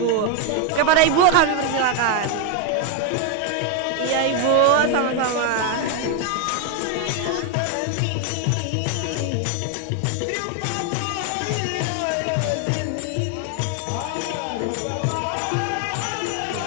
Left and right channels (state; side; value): different; both; correlation 0.01